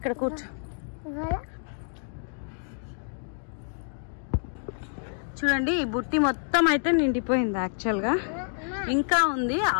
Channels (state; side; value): silent; right; digital silence